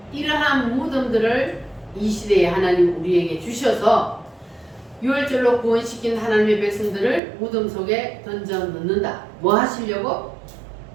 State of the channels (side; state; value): left; drops out; at 7.2 s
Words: 이러한 무덤들을 이 시대에 하나님 우리에게 주셔서 유월절로 구원시킨 하나님의 백성들을 무덤 속에 던져 넣는다. 뭐 하시려고?